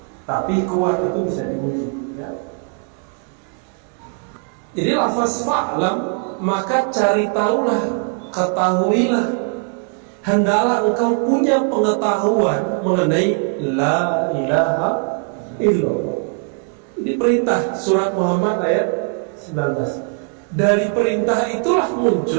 Tapi kuat itu bisa diuji ya. Jadi lafaz fa'lam, maka cari tahulah, ketahuilah. Hendaklah engkau punya pengetahuan mengenai la ilaha illallah. Ini perintah surat Muhammad ayat 19. Dari perintah itulah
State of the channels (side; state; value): left; quieter; 38.7 dB